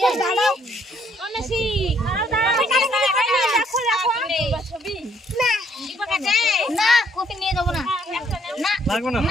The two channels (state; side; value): normal; both; correlation 0.67